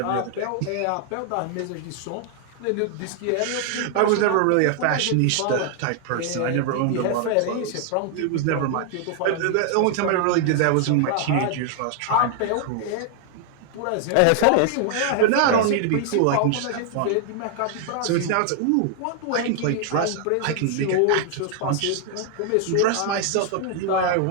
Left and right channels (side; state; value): both; different; correlation 0.00